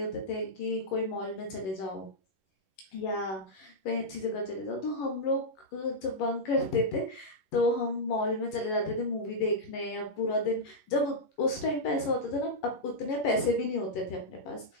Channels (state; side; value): late; right; 10 ms